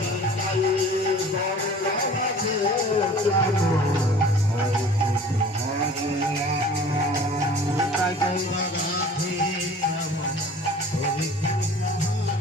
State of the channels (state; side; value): normal; both; correlation 0.46